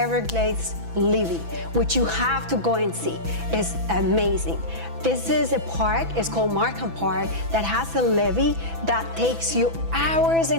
levee, which you have to go and see. It's amazing. This is a park, it's called Markham Park, that has a levee that takes you hours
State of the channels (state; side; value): late; left; 6.0 ms